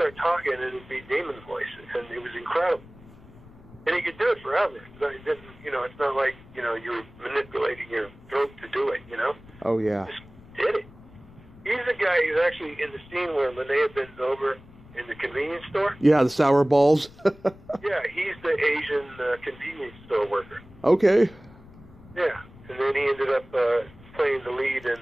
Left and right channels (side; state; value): left; noise; rumble, 22 dB below the sound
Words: talking and it'd be demon voices, and it was incredible. And he could do it forever. It didn't, you know, it's not like, you know, you were manipulating your throat to do it, you know? Oh, yeah. Just did it. He's the guy who's actually in the scene where Linnea bends over in the convenience store. Yeah, the sour balls. Yeah, he's the Asian convenience store worker. Okay. Yeah, and then he ended up playing the lead in